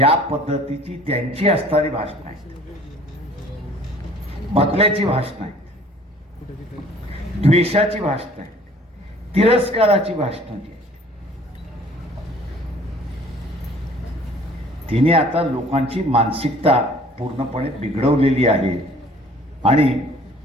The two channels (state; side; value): normal; both; correlation 0.53